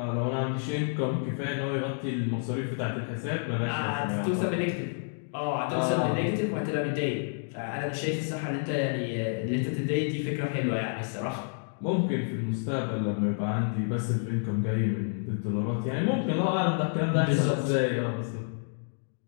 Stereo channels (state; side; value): silent; right; digital silence